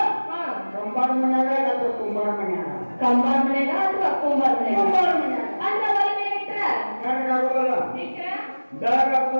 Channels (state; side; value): inverted; both; correlation -1.00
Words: ಹಾ ಕಂಬಾರ ಮನ್ಯಾಗ ಅಥವಾ ಕುಂಬಾರ ಮನ್ಯಾಗ ಕಂಬಾರ ಮನೆಗ ಅಥವಾ ಕುಂಬಾರ ಮನೆಗ ಕುಂಬಾರ ಮನ್ಯಾಗ ಅಂದ್ರೆ ಒಲೆ ಮೇಲೆ ಇಟ್ರ ಕಣಗಾಗೋಲ್ಲ ಇಟ್ರ